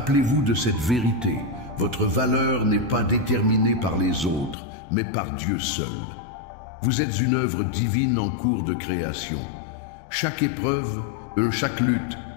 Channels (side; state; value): right; drops out; at 4.5 s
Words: de cette vérité. Votre valeur n'est pas déterminée par les autres, mais par Dieu seul. Vous êtes une œuvre divine en cours de création. Chaque épreuve, chaque lutte,